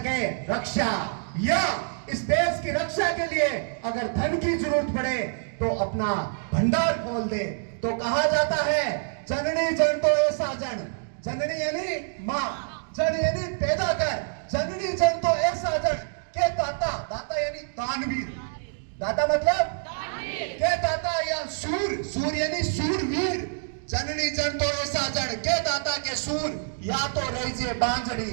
रक्षा, या इस देश की रक्षा के लिए अगर धन की जरूरत पड़े तो अपना भंडार खोल दे। तो कहा जाता है जननी जन तो ऐसा जन, जननी यानी माँ, जन यानी पैदा कर, जननी जन तो ऐसा जन के दाता, दाता यानी दानवीर, दाता मतलब के दाता, या सूर, सूर यानी सूरवीर। जननी जन तो ऐसा जन के दाता के सूर, या तो रही जे बांझड़ी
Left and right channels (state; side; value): silent; left; digital silence